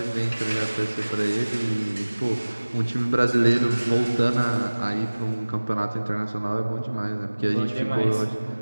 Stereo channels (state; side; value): inverted; both; correlation -1.00